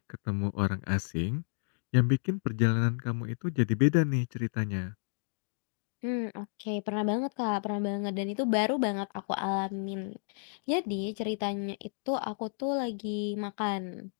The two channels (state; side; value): silent; right; digital silence